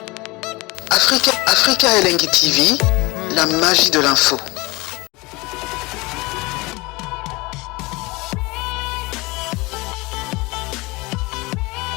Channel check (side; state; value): right; quieter; 23.9 dB